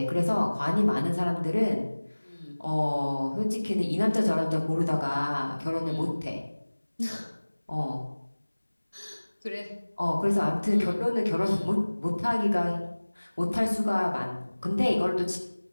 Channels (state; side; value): inverted; both; correlation -1.00